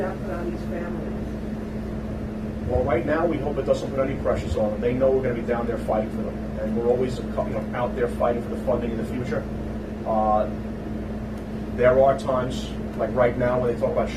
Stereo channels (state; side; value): identical; both; correlation 1.00